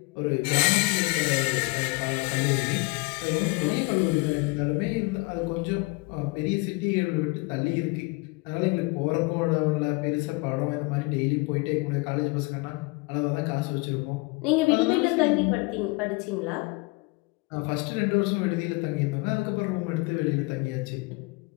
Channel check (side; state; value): right; quieter; 26.1 dB